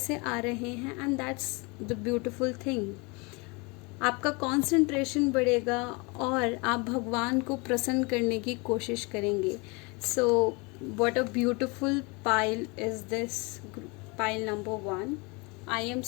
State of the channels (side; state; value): right; quieter; 28.6 dB